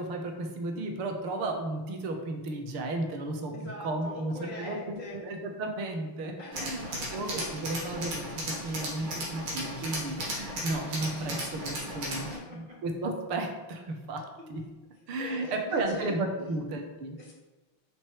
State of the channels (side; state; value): left; late; 6.0 ms